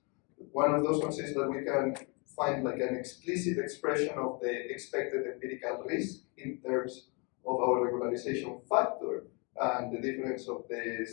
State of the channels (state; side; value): quieter; right; 32.2 dB